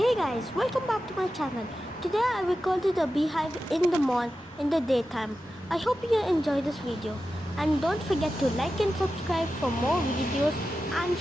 guys, welcome back to my channel. Today I recorded a beehive in the mall in the daytime. I hope you enjoy this video and don't forget to like and subscribe for more videos and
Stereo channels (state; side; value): normal; both; correlation 0.92